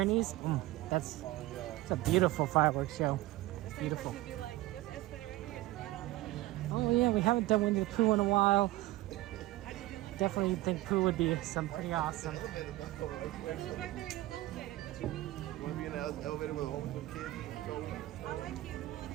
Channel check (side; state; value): left; quieter; 17.6 dB